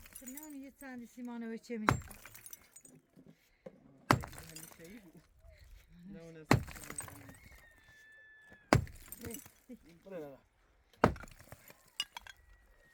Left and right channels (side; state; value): both; identical; correlation 1.00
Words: نه اون یه چندی سیمانه و چه میده Şeyi bu. Ne o ne? Buraya bak.